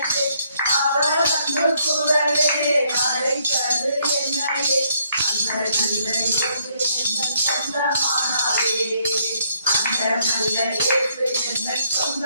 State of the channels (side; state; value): both; inverted; correlation -0.70